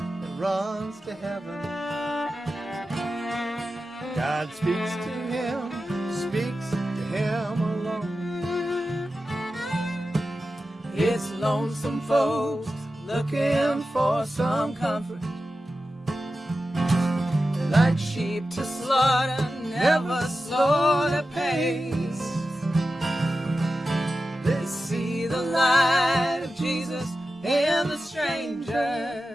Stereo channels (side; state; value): both; normal; correlation 0.93